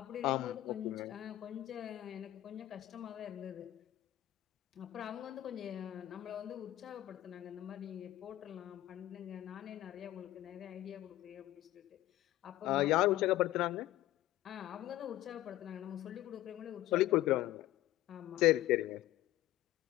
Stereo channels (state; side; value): quieter; right; 15.1 dB